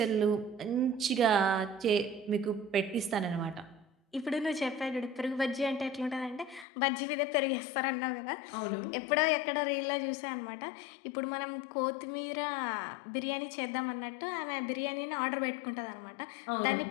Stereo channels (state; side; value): drops out; right; at 6.7 s